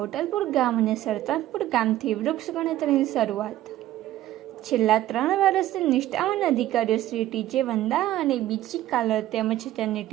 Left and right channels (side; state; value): left; quieter; 14.1 dB